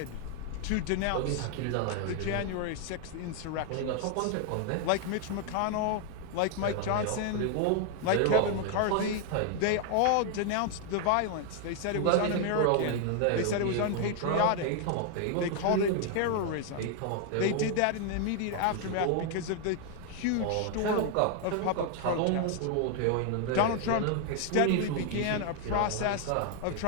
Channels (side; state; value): both; different; correlation 0.00